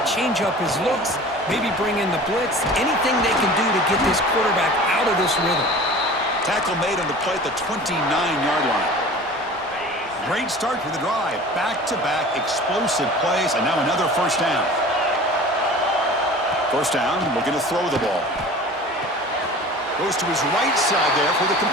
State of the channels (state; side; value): normal; both; correlation 0.41